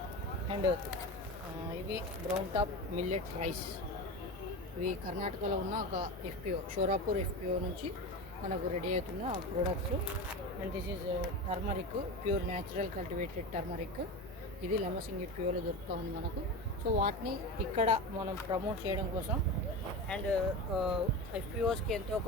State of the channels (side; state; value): both; normal; correlation 0.24